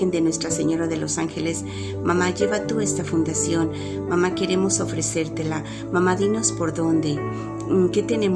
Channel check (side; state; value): both; identical; correlation 1.00